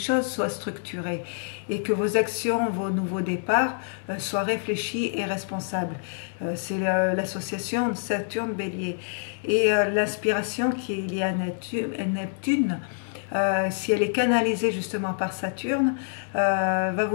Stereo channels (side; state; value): right; silent; digital silence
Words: soient structurées et que vos actions, vos nouveaux départs soient réfléchis et responsables. C'est l'association Saturne-Bélier. Et l'inspiration qui est liée à Neptune, si elle est canalisée justement par Saturne, va